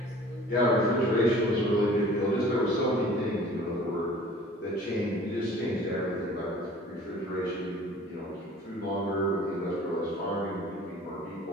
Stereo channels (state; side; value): normal; both; correlation 0.48